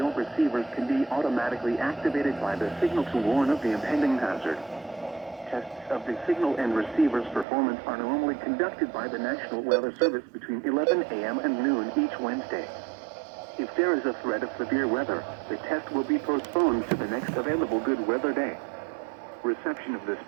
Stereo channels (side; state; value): left; drops out; at 7.5 s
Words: receivers can be automatically activated by the signal to warn of the impending hazard. Tests of the signal and receiver's performance are normally conducted by the National Weather Service between 11 a.m. and noon each Wednesday. If there is a threat of severe weather, the test will be postponed to the next available good weather day. Reception of this